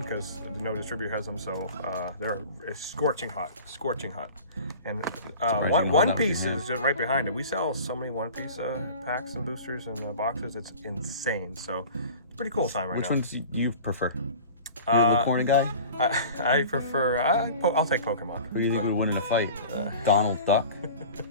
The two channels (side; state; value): both; inverted; correlation -0.40